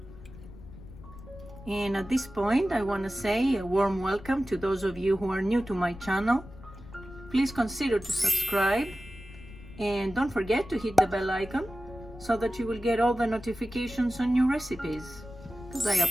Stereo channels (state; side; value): noise; left; rumble, 17 dB below the sound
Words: And at this point I want to say a warm welcome to those of you who are new to my channel. Please consider to subscribe and don't forget to hit the bell icon so that you will get all the notifications on new recipes, because I